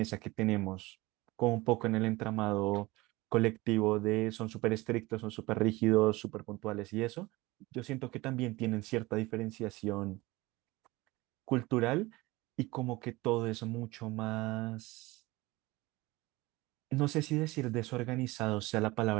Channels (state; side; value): quieter; left; 21.3 dB